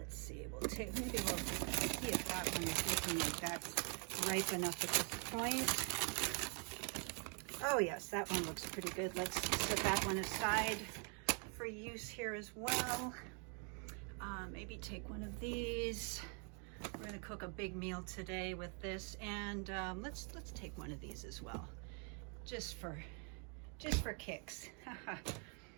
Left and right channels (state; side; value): quieter; left; 38.2 dB